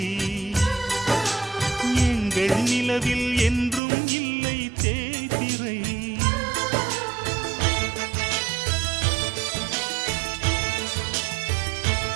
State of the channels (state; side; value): drops out; left; at 3.8 s